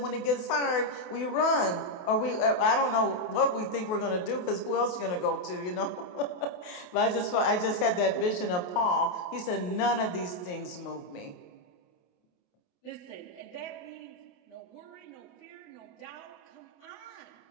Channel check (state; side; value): late; right; 28 ms